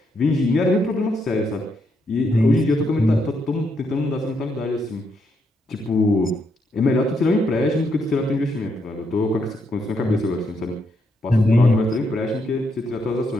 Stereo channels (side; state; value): both; normal; correlation 0.78